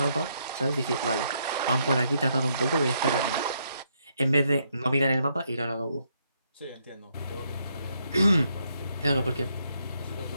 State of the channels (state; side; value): inverted; both; correlation -0.75